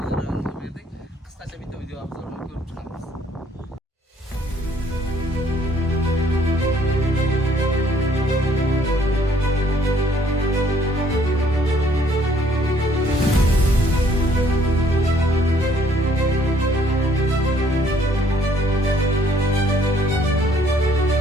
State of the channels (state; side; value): normal; both; correlation 0.63